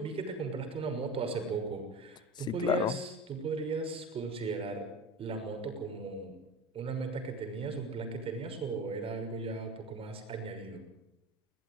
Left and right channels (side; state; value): both; normal; correlation 0.31